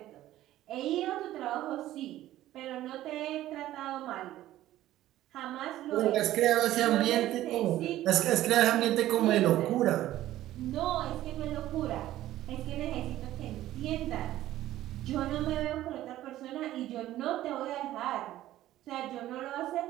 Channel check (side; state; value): left; quieter; 14.3 dB